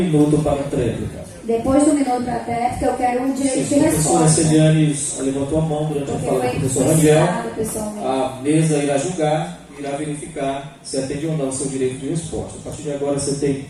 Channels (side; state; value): both; identical; correlation 1.00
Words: para a tréplica. Depois do minuto para a tréplica, eu quero um direito de A professora resposta. Celiane levantou a mão durante a fala do professor Rangel. Pessoalmente. A mesa irá julgar, irá verificar se atende ou não ao seu direito de resposta. A partir de agora, você tem